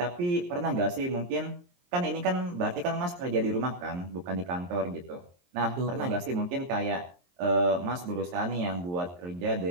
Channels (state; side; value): late; left; 23 ms